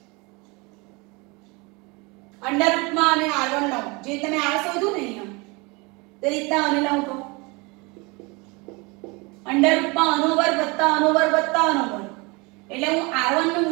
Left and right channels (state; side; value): quieter; left; 27.1 dB